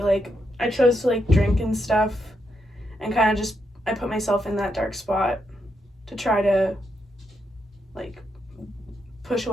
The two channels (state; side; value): normal; both; correlation 0.81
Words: like drink and stuff and kind of just I put myself in that dark spot to try to like push